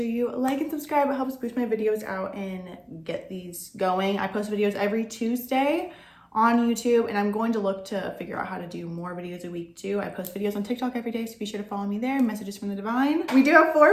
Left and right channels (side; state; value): both; identical; correlation 1.00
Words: you like and subscribe. It helps boost my videos out and get these going. I post videos every Tuesday on YouTube, and I'm going to look to figure out how to do more videos a week too. I post videos on TikTok every day, so be sure to follow me there. Messages from the divine. We do have